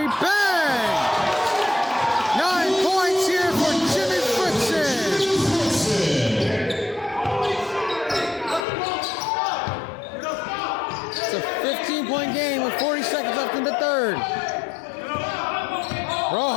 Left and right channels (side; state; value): right; drops out; at 8.7 s